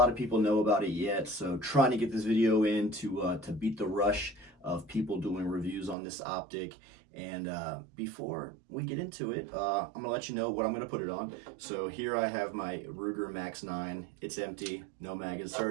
of people know about it yet. So trying to get this video in to beat the rush of people doing reviews on this optic. And before we get into it, I'm gonna let you know what I'm gonna put it on. So here I have my Ruger Max 9. It's empty, no mag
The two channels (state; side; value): drops out; left; at 6.0 s